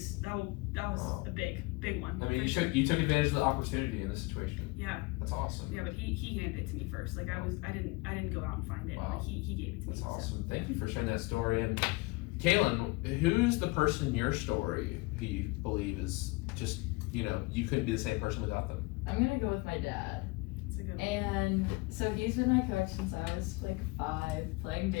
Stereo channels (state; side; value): quieter; right; 24.9 dB